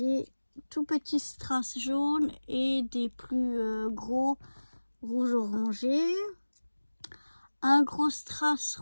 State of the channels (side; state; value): both; inverted; correlation -1.00